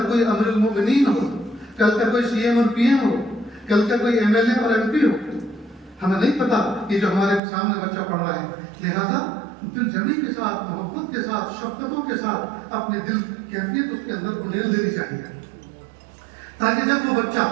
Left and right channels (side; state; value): left; drops out; at 7.4 s